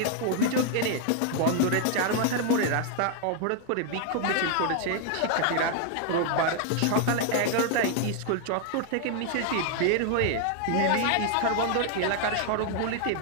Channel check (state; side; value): different; both; correlation 0.00